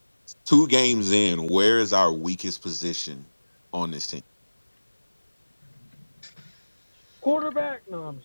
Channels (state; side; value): inverted; both; correlation -1.00